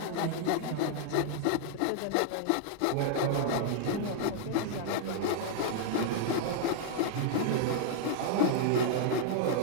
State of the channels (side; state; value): both; different; correlation -0.01